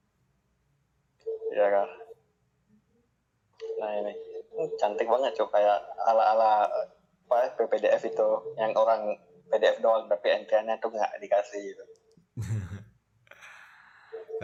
Iya kan. Nah ini cantik banget cuy kayak ala apa PPDF itu yang orang PDF doang tapi entry-nya tuh nggak dikasih gitu.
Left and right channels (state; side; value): identical; both; correlation 1.00